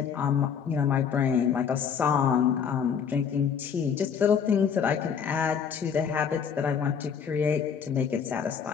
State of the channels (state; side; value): quieter; right; 7.1 dB